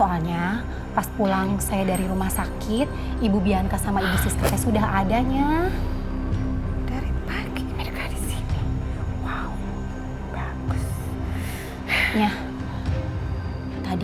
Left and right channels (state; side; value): identical; both; correlation 1.00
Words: pas pulang saya dari rumah sakit, Ibu Bianca sama Ibu Siska teh sudah adanya. Dari pagi mereka di sini. Wow, bagus. Ya,